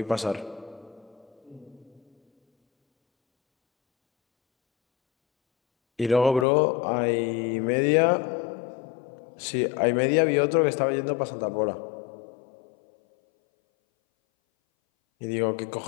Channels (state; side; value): drops out; right; at 6.5 s